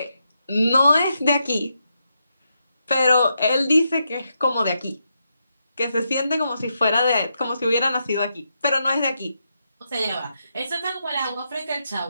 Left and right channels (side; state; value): both; inverted; correlation -0.83